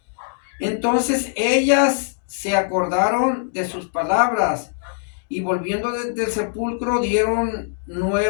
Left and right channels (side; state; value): right; silent; digital silence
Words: Entonces ellas se acordaron de sus palabras y volviendo desde el sepulcro dieron